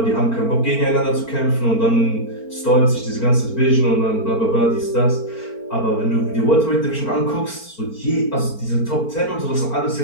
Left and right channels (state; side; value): late; right; 4.4 ms